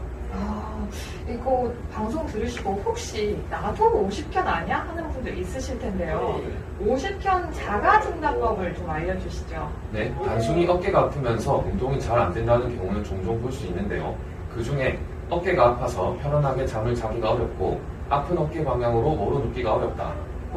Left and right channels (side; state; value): both; identical; correlation 1.00